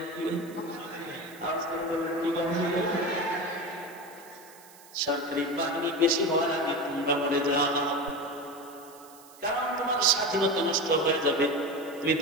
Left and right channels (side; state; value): right; noise; hiss, 22 dB below the sound